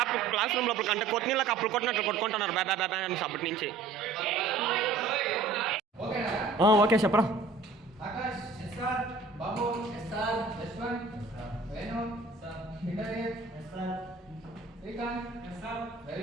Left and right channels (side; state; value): left; quieter; 4.1 dB